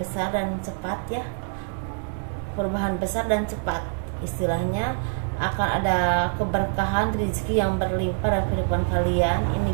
dan cepat ya, perubahan besar dan cepat. Istilahnya akan ada keberkahan rezeki yang berlimpah dalam kehidupan kalian.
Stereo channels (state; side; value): silent; left; digital silence